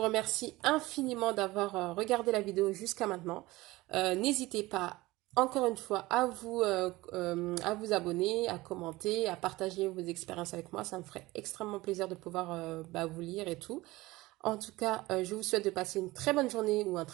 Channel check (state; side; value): quieter; left; 19.7 dB